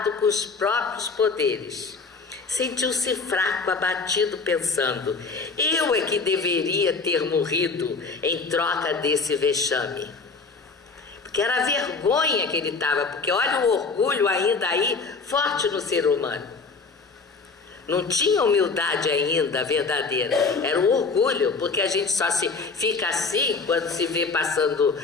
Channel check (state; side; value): quieter; right; 4.4 dB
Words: com os próprios poderes. Sentiu-se fraco, abatido, pensando: eu é que deveria ter morrido em troca desse vexame. Porque era a vergonha que ele estava, porque olha o orgulho ainda aí, forte no ser humano. Não tinha humildade ainda verdadeira, era o orgulho, porque a gente só se fica assim, quando se vê passando